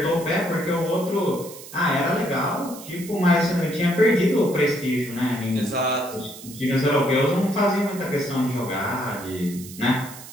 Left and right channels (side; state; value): right; noise; hiss, 15 dB below the sound